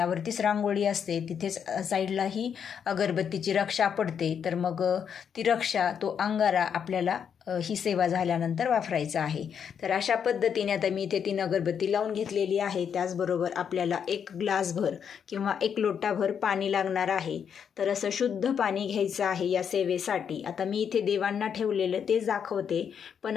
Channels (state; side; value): quieter; right; 7.6 dB